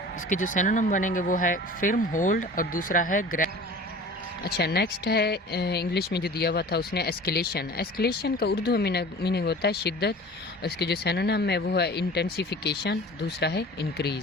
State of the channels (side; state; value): both; normal; correlation 0.41